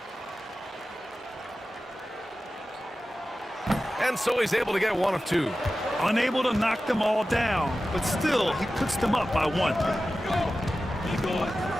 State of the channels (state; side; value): normal; both; correlation 0.94